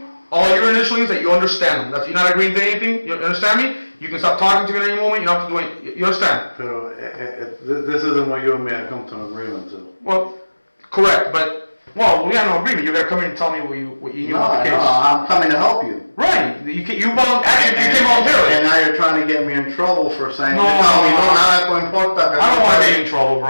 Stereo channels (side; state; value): both; inverted; correlation -1.00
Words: All your initials that you understand them. You're not agreeing to anything. You understand me? You can stop talking to me at any moment. You don't have to do anything. You understand? Pero, this isn't what you and me have come to an agreement to. Well, correct, but we have no agreement. You gotta come in and tell me what you know about the case. No, I'm coming to help you. Right. You came voluntarily. And now you're trying to get me in trouble for saying, No, nada importa. I don't want to get you in trouble,